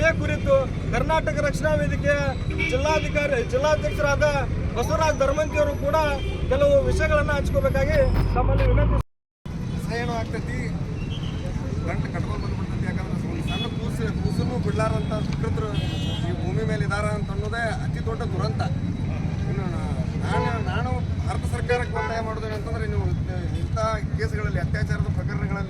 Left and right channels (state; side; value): identical; both; correlation 1.00